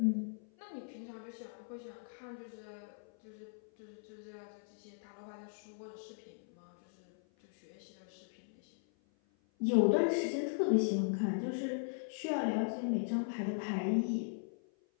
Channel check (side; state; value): right; silent; 52 dB below the other